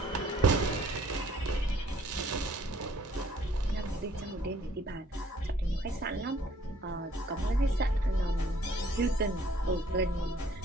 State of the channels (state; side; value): normal; both; correlation 0.59